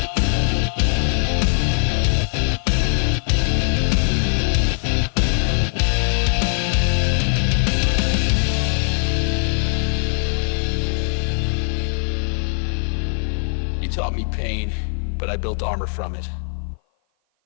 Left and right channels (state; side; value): silent; right; 56 dB below the other